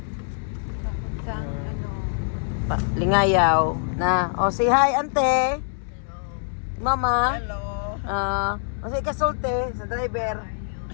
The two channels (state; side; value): silent; right; digital silence